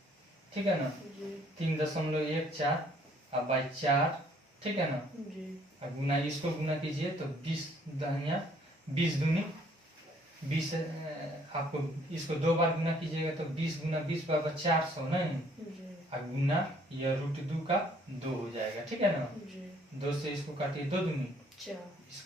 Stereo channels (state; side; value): normal; both; correlation 0.62